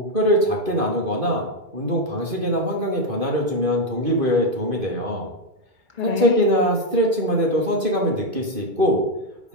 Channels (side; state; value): left; late; 2.5 ms